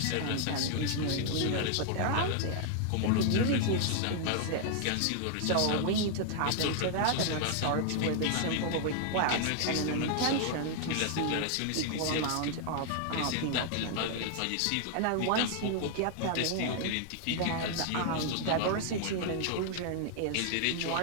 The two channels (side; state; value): both; different; correlation 0.00